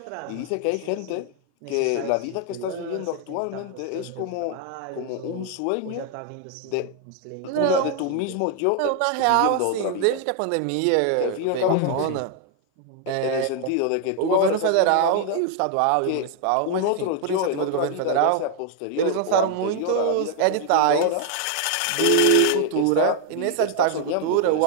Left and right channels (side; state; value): both; different; correlation 0.00